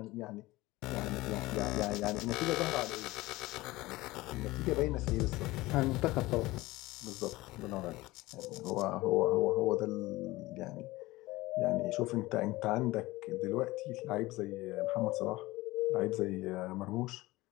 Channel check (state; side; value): quieter; right; 19.5 dB